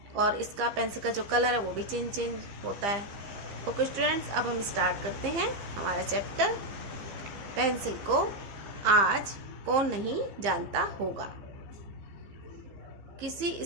और इसका पेंसिल का जो कलर है वो भी चेंज होता है. ओके स्टूडेंट्स, अब हम स्टार्ट करते हैं हमारा चैप्टर. पेंसिल को आज कौन नहीं जानता होगा. किसी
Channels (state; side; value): late; left; 15 ms